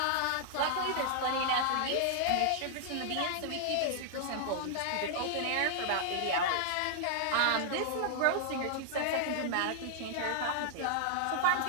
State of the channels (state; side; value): different; both; correlation -0.01